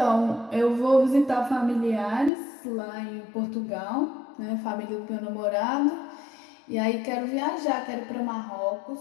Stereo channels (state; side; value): drops out; right; at 2.3 s